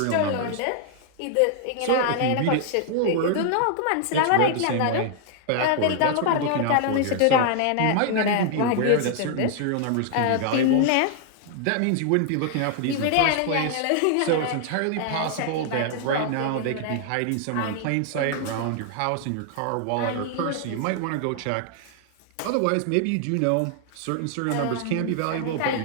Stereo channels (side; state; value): both; different; correlation 0.00